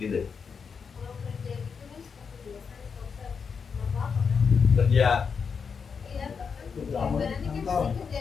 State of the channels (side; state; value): right; quieter; 5.9 dB